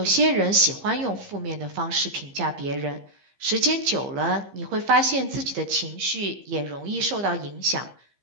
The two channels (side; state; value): left; late; 15 ms